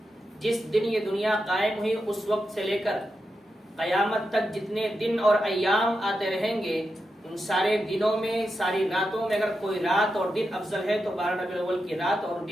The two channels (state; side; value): normal; both; correlation 0.88